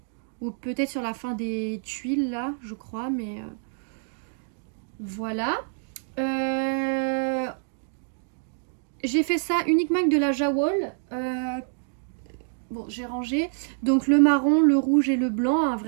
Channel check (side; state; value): left; silent; digital silence